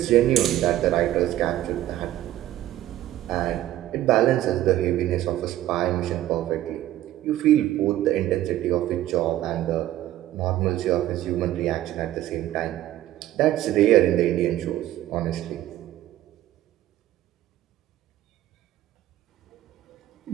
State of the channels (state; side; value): quieter; left; 13.9 dB